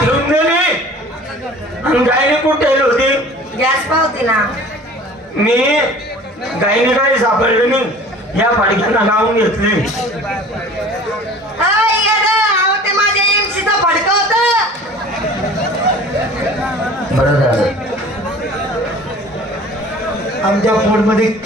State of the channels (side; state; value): both; normal; correlation 0.45